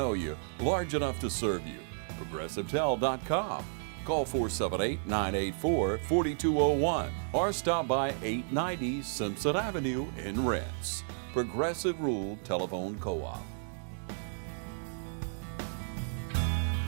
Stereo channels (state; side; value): silent; left; digital silence